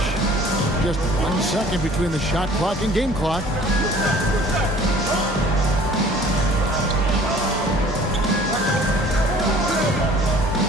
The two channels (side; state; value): both; normal; correlation 0.51